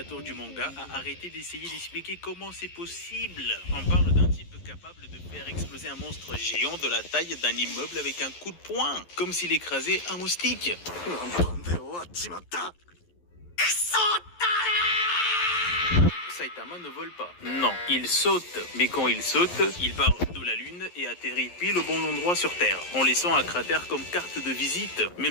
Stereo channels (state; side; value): late; right; 11 ms